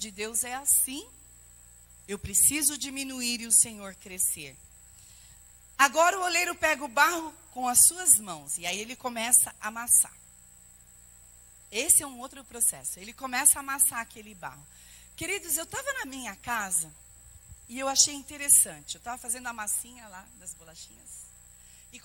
Deus é assim. Eu preciso diminuir e o Senhor crescer. Agora o oleiro pega o barro com as suas mãos. E aí ele começa a amassar. Esse é um outro processo. Ele começa a amassar aquele barro. Queridos, eu estava na minha casa e eu achei interessante. Eu estava fazendo a massinha lá das bolachinhas e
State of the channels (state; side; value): identical; both; correlation 1.00